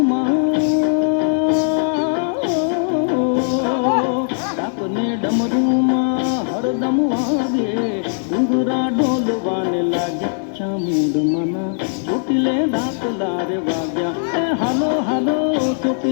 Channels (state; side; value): silent; right; 62 dB below the other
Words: ડાકને ડમરૂમાં હરદમ વાગે. ડુંગરા ડોલવાને લાગ્યા ચામુંડ માના, ચોટીલે ડાકલા રે વાગ્યા. એ હાલો હાલો